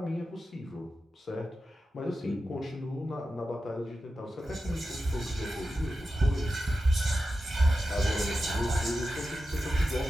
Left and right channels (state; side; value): normal; both; correlation 0.92